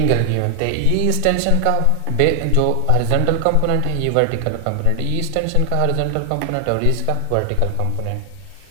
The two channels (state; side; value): different; both; correlation 0.00